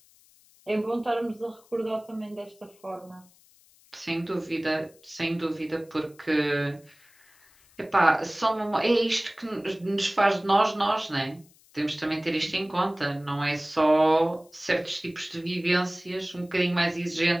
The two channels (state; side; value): noise; left; hiss, 29 dB below the sound